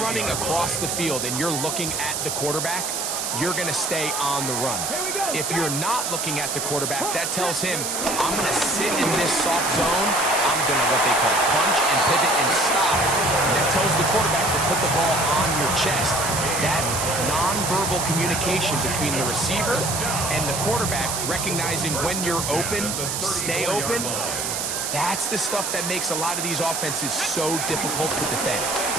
running across the field and you're looking at the quarterback, you're going to stay on the run. If you're not looking at the quarterback, that tells him, I'm going to sit in this soft zone. I'm going to what they call punch and pivot and stop. And that tells the quarterback to put the ball on your chest. That nonverbal communication between the receiver and the quarterback, recognizing when you're open, stay open, that's the stuff that makes a lot of these offenses so difficult to defend.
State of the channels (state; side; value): noise; right; hiss, 2 dB below the sound